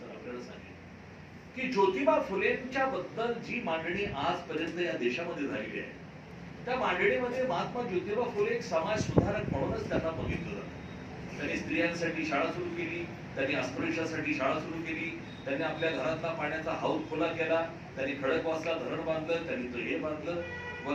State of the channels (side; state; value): both; identical; correlation 1.00